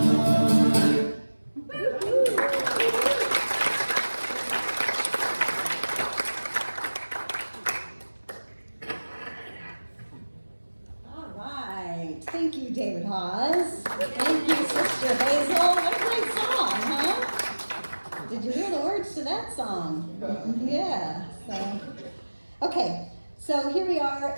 Thank you, David Hawes. Thank you, Sister Hazel. What a great song, huh? Did you hear the words to that song? Yeah. So, okay. So here we are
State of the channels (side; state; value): both; inverted; correlation -1.00